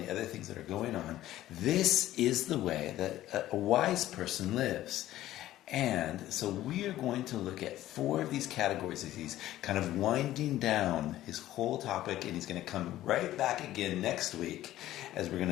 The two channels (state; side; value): quieter; right; 14.3 dB